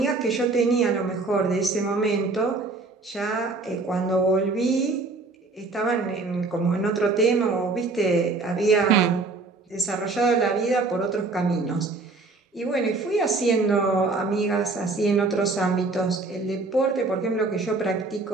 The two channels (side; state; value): left; quieter; 3.6 dB